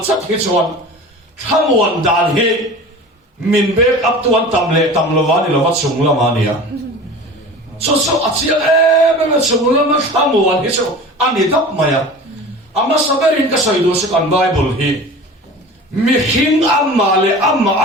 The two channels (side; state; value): both; normal; correlation 0.37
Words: chất hi chọn tham quan đàn hi mình bế áp tuan tam lo va đi lo vắt sung lo mà nia so achiang em chung la ma thamuan hi chu ani dap maya ama saberin ka soidu se kan bible hi mi hing amma le amma